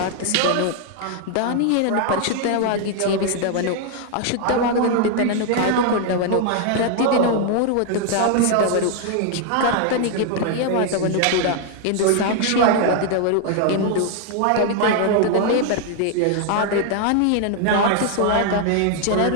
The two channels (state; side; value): different; both; correlation 0.00